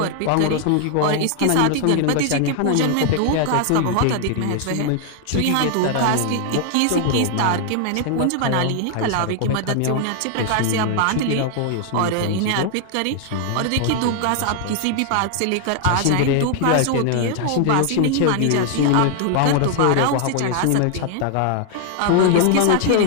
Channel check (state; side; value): different; both; correlation 0.00